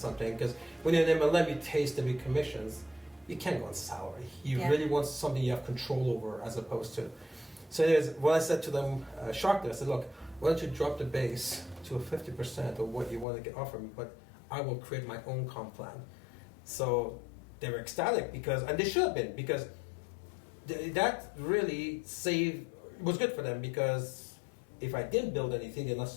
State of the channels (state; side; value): drops out; right; at 13.2 s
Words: because when you're in MLM, you taste the big commissions. You can't go on salary. You really want something you have control over, as opposed to. So what I said to them, shocked them. I said, look, why don't you drop the base to 50% of what you want to get offered me, but I will create my own comp plan. So they were ecstatic, and they should have been, because that really was good for them, because if I didn't build anything, they're not